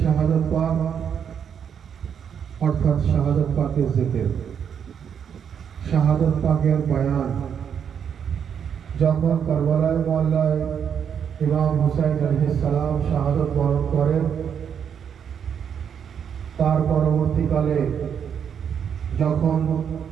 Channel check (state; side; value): quieter; left; 7.9 dB